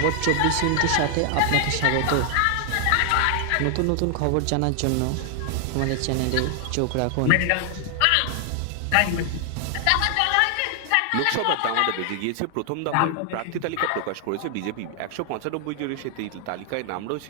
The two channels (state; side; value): different; both; correlation 0.00